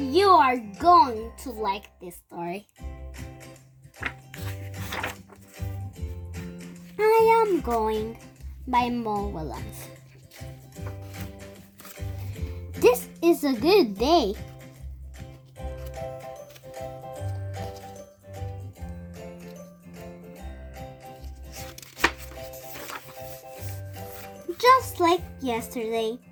are going to like this story. I Am Going by Mo Williems. This is a good day. Just like yesterday.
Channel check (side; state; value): both; identical; correlation 1.00